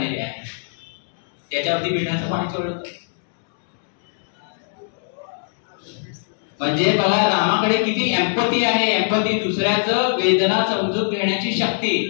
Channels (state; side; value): silent; right; digital silence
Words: आहे, त्याच्यावरती मिठाचं पाणी चोळलं, म्हणजे बघा रामाकडे किती एम्पथी आहे. एम्पथी, दुसऱ्याचं वेदना समजून घेण्याची